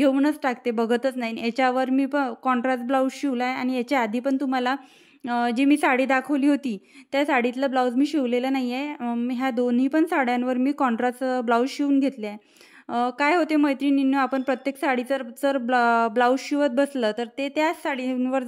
टाकते, बघतच नाही. याच्यावर मी कॉन्ट्रास्ट ब्लाऊज शिवला आहे आणि याच्या आधी पण तुम्हाला जी मी साडी दाखवली होती त्या साडीतलं ब्लाऊज मी शिवलेलं नाही आहे. मी ह्या दोन्ही पण साड्यांवर मी कॉन्ट्रास्ट ब्लाऊज शिवून घेतले आहे. काय होते मैत्रिणींनो, आपण प्रत्येक साडीचं जर ब्लाऊज शिवत बसलं तर ते त्याच साडींवर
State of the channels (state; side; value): identical; both; correlation 1.00